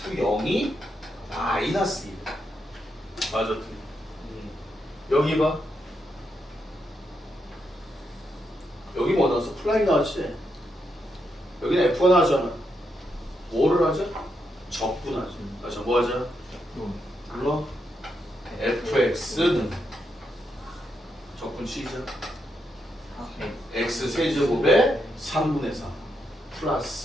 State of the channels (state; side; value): normal; both; correlation 0.81